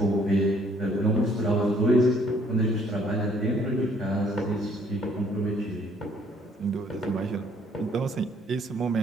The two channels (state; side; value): normal; both; correlation 0.63